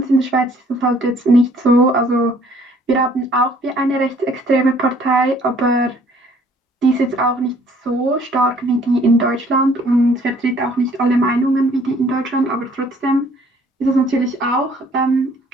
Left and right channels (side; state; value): both; normal; correlation 0.59